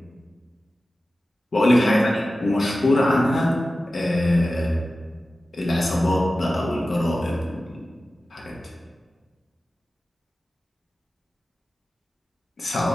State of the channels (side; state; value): both; normal; correlation 0.95